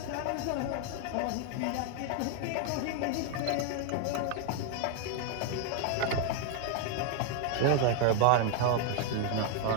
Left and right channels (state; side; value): different; both; correlation 0.01